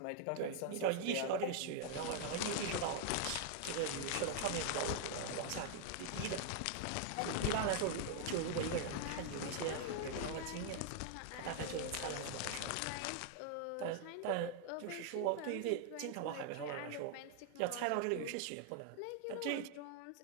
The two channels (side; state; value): both; different; correlation 0.00